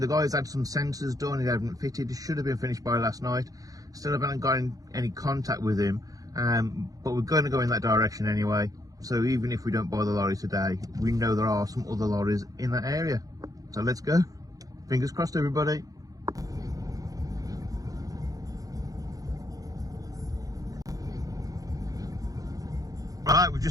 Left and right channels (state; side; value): late; left; 0.17 ms